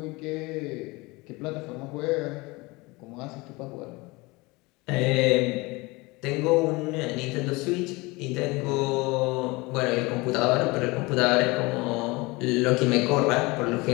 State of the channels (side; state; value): right; quieter; 24.0 dB